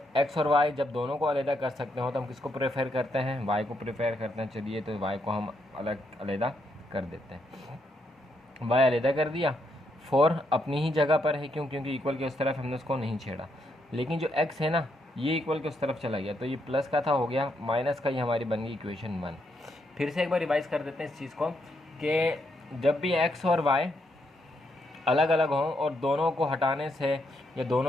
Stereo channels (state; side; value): normal; both; correlation 0.78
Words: x और y जब दोनों को अलग कर सकते हो तो हम किसको प्रेफर करते हैं? y को प्रेफर करते हैं। चलिए तो y को हम अलग कर देते हैं। y अलग कर दिया, 4 अपनी ही जगह पर है, क्योंकि इक्वल के उस तरफ हमने उसको नहीं छेड़ा। लेकिन जो x है ना, ये इक्वल के उस तरफ चला गया, तो ये प्लस का था हो गया माइनस का, ये हमारी बन गई इक्वेशन 1। फिर से एक बार रिवाइज कर देते हैं इस चीज़ को कि जब भी x और y अलग अलग हों और दोनों को हटाने से या